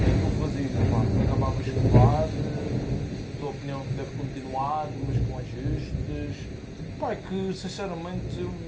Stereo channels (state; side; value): identical; both; correlation 1.00